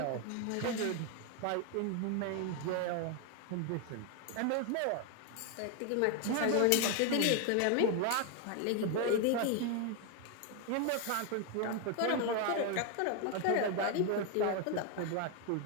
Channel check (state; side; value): different; both; correlation 0.01